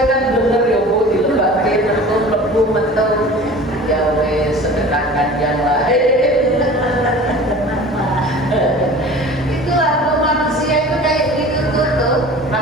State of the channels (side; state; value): both; normal; correlation 0.41